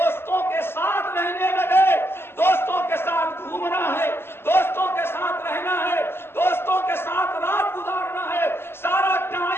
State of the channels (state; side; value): late; right; 0.11 ms